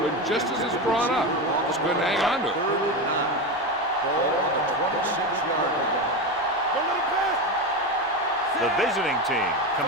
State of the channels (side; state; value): both; normal; correlation 0.18